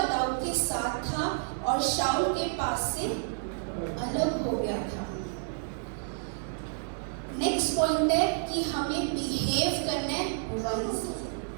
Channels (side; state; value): left; silent; 58 dB below the other